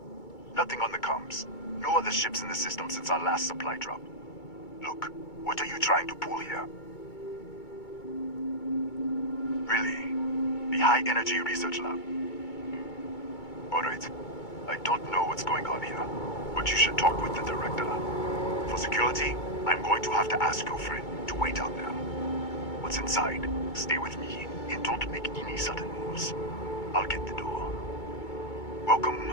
Nothing on the comms. No other ships in the system since our last supply drop. Look, what are you trying to pull here? Really? The High Energy Research Lab? Alright. I don't know what's going on here, but you should talk with the director. For security, I'm going to have to ask your friend to wait out there. What's inside, stay with me, and don't make any sudden moves. I'll get the door. Welcome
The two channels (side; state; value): right; late; 2.2 ms